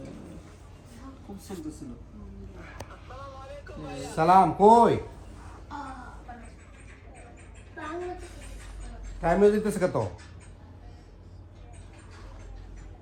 খুব চলতেছিল সালাম কই টাইম দিতেছে কত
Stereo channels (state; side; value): identical; both; correlation 1.00